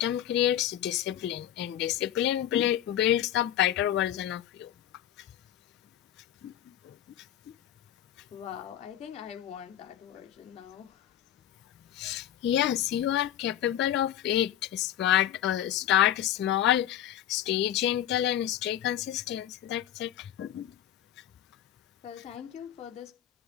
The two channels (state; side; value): quieter; right; 11.7 dB